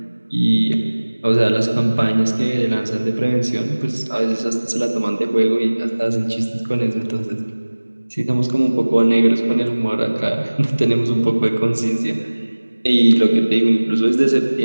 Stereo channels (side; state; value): both; inverted; correlation -1.00